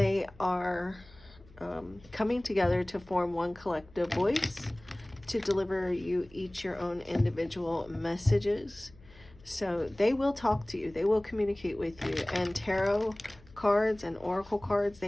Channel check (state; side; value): noise; left; hum, 24 dB below the sound